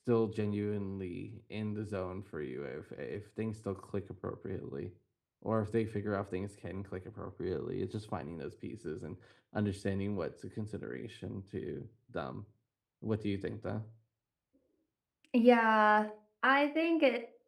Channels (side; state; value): both; identical; correlation 1.00